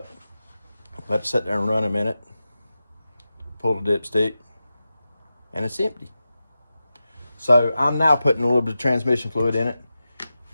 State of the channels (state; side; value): inverted; both; correlation -0.93